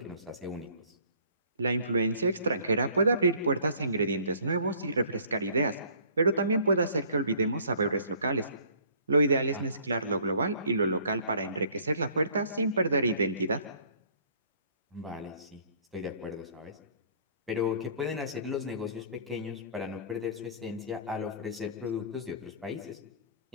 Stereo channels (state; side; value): inverted; both; correlation -0.56